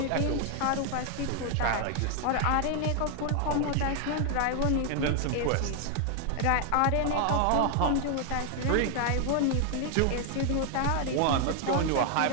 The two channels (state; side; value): different; both; correlation 0.00